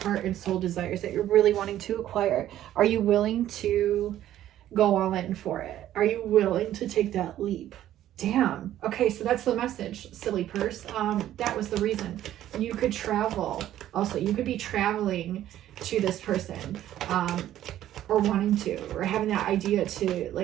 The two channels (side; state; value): left; quieter; 12.5 dB